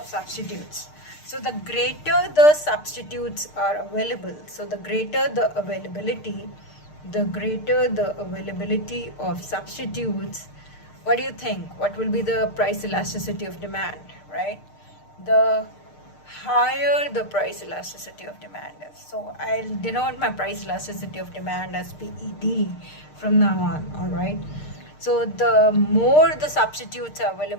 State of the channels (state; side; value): late; right; 6.6 ms